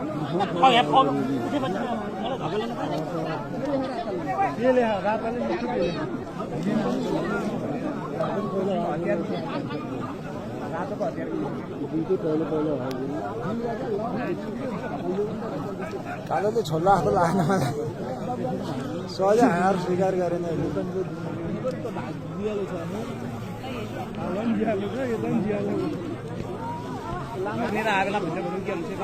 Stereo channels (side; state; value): both; identical; correlation 1.00